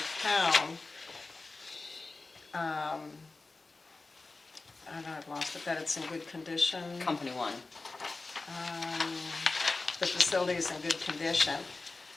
town. I don't know, I've lost it, that it's in good condition. Company One. The facility is in good condition.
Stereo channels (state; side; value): quieter; right; 3.6 dB